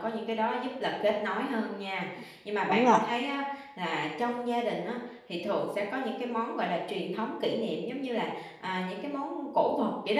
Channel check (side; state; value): both; identical; correlation 1.00